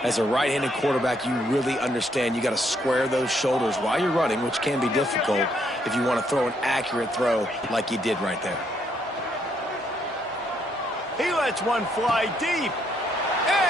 as a right-handed quarterback, you really understand you got to square those shoulders while you're running, which can be difficult if you want to throw an accurate throw like he did right there. He lets one fly deep.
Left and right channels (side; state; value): both; normal; correlation 0.72